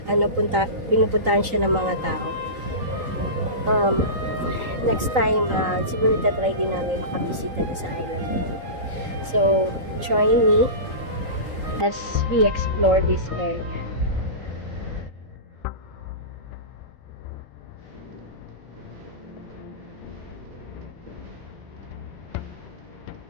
pinupuntahan siya ng mga tao. Next time, siguro tatry din namin makabisita sa island na yun. So, join me as we explore this area.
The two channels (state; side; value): late; left; 3.8 ms